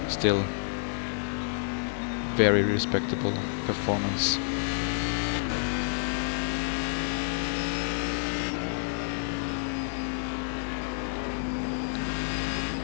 still very respectable performance.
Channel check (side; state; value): right; silent; digital silence